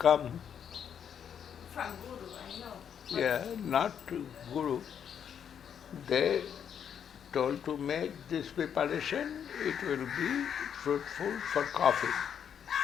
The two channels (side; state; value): right; quieter; 8.3 dB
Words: From Guru, I know. Yeah, not to Guru. They told to make this preparation, it will be fruitful for coffee.